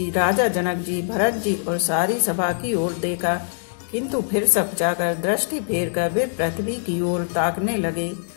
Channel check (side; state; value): right; silent; 64 dB below the other